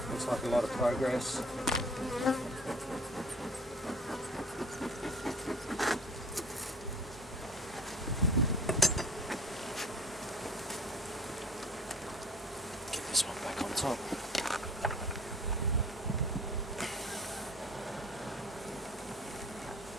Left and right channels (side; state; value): both; normal; correlation 0.48